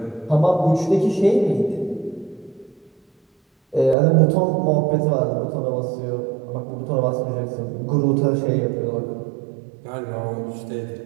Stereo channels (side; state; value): left; drops out; at 4.0 s